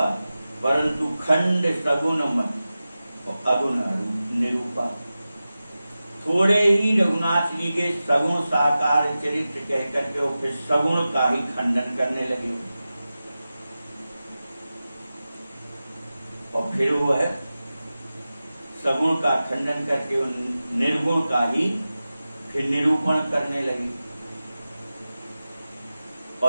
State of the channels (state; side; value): inverted; both; correlation -0.95